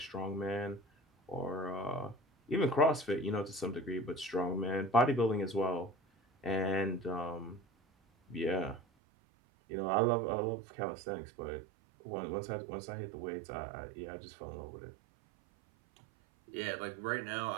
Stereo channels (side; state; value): left; drops out; at 8.8 s